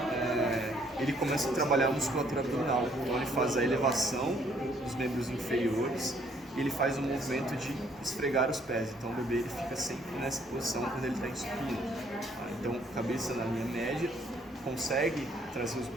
ele começa a trabalhar a musculatura abdominal. Então, ele faz a elevação dos membros inferiores e ele faz o movimento de esfregar os pés. Então, o bebê ele fica sempre nessa posição quando ele está em supino. Então, cabeça na linha média, consegue trazer os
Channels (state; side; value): normal; both; correlation 0.65